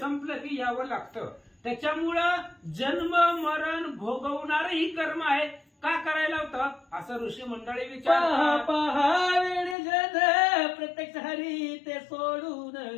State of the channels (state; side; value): drops out; right; at 9.8 s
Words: की यावं लागतं. त्याच्यामुळं जन्म मरण भोगवणारही कर्म आहे. का करायला होतं असं ऋषी मंडळी पहा विचार. पहा वेळ जन प्रत्यक्ष हरी ते सोडून